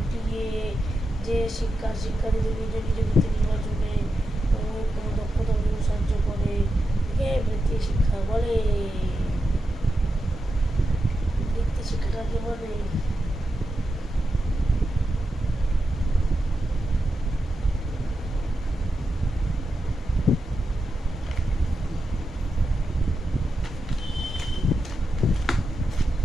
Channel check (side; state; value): both; normal; correlation 0.88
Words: যে শিক্ষার্থীদের নিজ নিজ বৃত্তি নির্বাচনে কোনো দক্ষতা অর্জনে সাহায্য করে বৃত্তি শিক্ষা বলে। বৃত্তি শিক্ষা কাকে বলে?